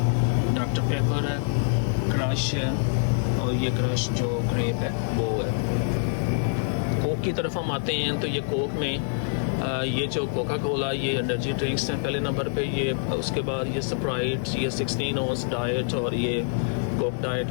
डॉक्टर पेपर है, क्रश है, और ये क्रश जो ग्रेप है वो है। कोक की तरफ हम आते हैं तो ये कोक में ये जो कोका कोला ये एनर्जी ड्रिंक्स हैं पहले नंबर पे। ये उसके बाद ये स्प्राइट, ये 16 ऑन्स डाइट, और ये कोक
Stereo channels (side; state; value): right; silent; 61 dB below the other